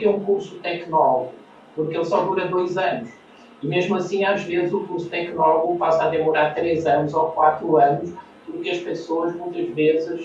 um curso tecnólogo? Porque ele só dura 2 anos. E mesmo assim, às vezes, o curso tecnólogo passa a demorar 3 anos ou 4 anos, porque as pessoas, muitas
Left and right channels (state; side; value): identical; both; correlation 1.00